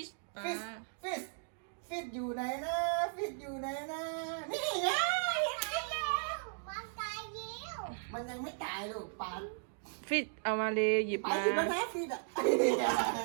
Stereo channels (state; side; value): silent; left; digital silence